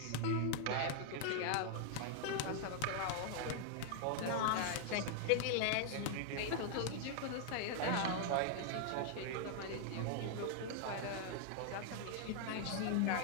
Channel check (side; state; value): both; different; correlation 0.00